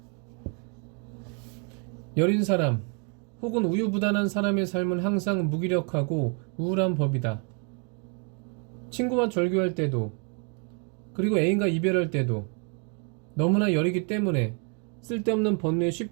여린 사람 혹은 우유부단한 사람의 삶은 항상 무기력하고 우울한 법이다. 친구와 절교할 때도, 그리고 애인과 이별할 때도 너무나 여리기 때문에 쓸데없는 번뇌에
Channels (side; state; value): left; quieter; 38.3 dB